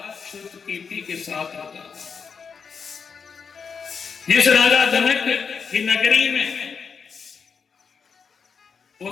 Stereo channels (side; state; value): right; quieter; 5.9 dB